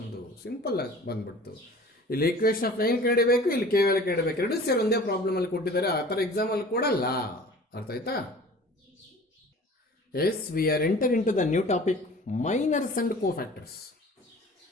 ಸಿಂಪಲ್ ಆಗಿ ಬಂದ್ಬಿಡ್ತು. ಇಲ್ಲಿ ಈಕ್ವೇಷನ್ ಆಫ್ ಲೈನ್ ಕಂಡಿಬೇಕು, ಇಲ್ಲಿ ಕೆ ವ್ಯಾಲ್ಯೂ ಕಂಡಿಬೇಕು. ಎರಡು ಸೇರಿ ಒಂದೇ ಪ್ರಾಬ್ಲಮ್ ಅಲ್ಲಿ ಕೊಟ್ಟಿದ್ದಾರೆ. ಆ ಥರ ಎಕ್ಸಾಮ್ ಅಲ್ಲಿ ಕೊಡಲ್ಲ. ಅರ್ಥ ಆಯ್ತಾ? Yes, we are enter in to the new topic, minors and cofactors.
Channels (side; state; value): both; normal; correlation 0.44